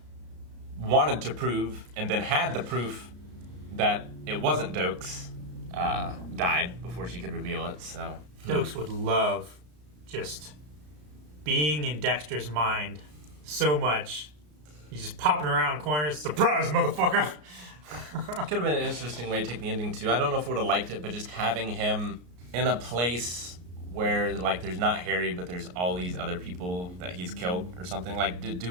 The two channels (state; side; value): late; left; 33 ms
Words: wanted to prove and then had the proof that it wasn't Dokes, died before she could reveal it. So Dokes would love just being in Dexter's mind so much. He's just popping around corners. Surprise, motherfucker! could have been an interesting way to take the ending too. I don't know if I would have liked it, but just having him in a place where like there's not Harry, but there's all these other people that he's killed or something. Like, to